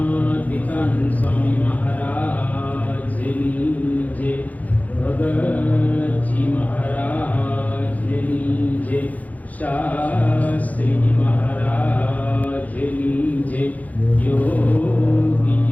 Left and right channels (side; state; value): right; late; 0.077 ms